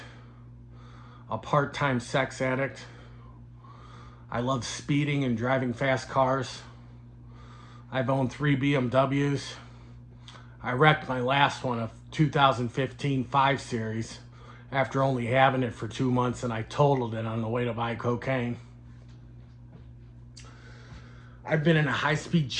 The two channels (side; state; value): both; identical; correlation 1.00